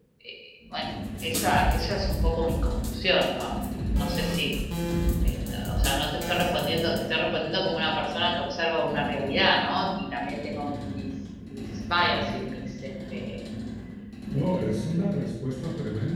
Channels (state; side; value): identical; both; correlation 1.00